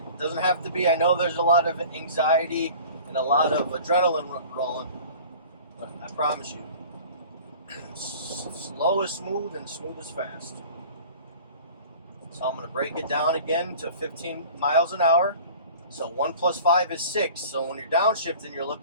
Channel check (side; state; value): both; inverted; correlation -0.43